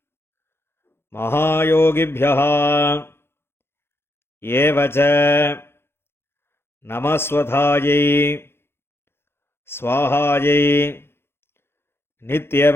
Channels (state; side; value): late; right; 0.11 ms